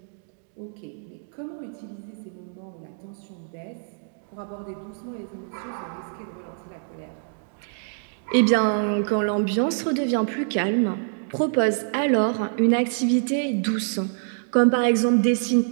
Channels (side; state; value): left; silent; digital silence